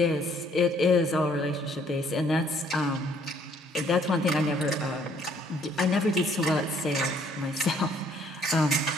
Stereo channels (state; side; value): normal; both; correlation 0.63